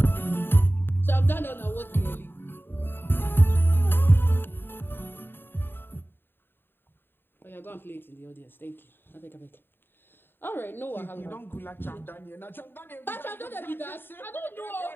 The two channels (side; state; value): right; late; 0.10 ms